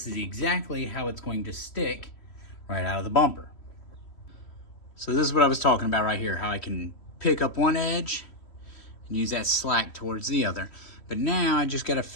is exactly how it's going to stick right out of the bumper. So this is what I was talking about right here, how I can pick up one edge and use that slack towards the other. But now I just gotta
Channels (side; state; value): right; late; 3.1 ms